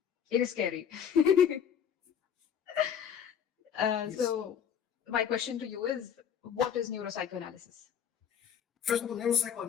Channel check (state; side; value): quieter; right; 8.3 dB